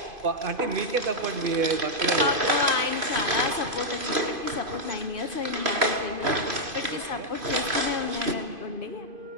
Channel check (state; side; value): late; left; 2.5 ms